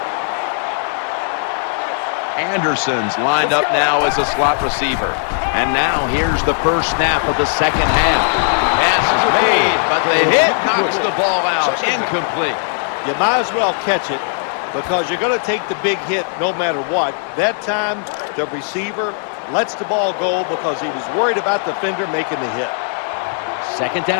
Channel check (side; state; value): right; silent; digital silence